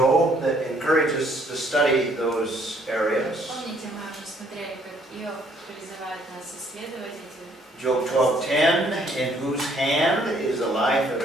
that encourages us to study those areas. Помните, мы уже смотрели, как Иов призывает нас исследовать эти. Job 12:10, in whose hand is the life of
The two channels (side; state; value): both; normal; correlation 0.65